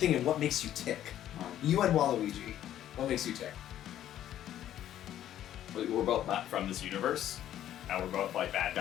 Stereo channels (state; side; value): quieter; right; 11.7 dB